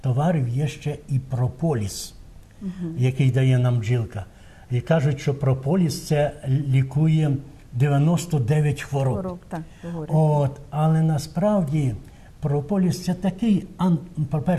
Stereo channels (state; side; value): identical; both; correlation 1.00